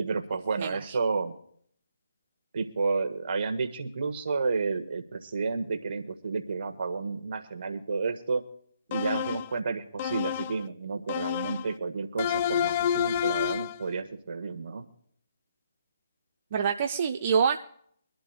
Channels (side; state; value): both; inverted; correlation -0.72